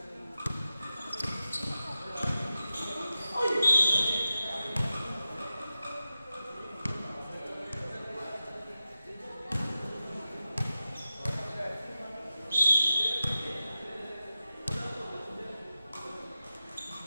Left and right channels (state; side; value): inverted; both; correlation -0.92